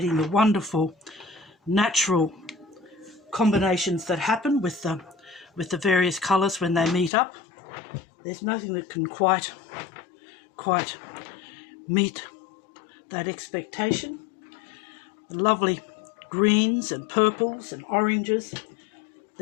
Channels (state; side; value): drops out; right; at 7.1 s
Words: the wonderful natural combinations that happen with the various colours when they meet up. There's nothing that can quite meet that expectation. The lovely greens and purples and oranges